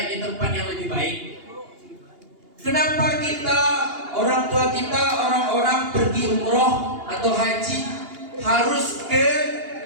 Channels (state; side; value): late; left; 2.8 ms